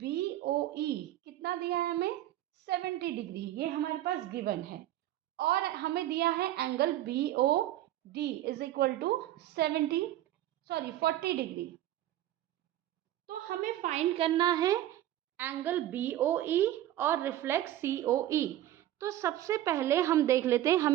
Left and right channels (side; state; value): left; quieter; 13.5 dB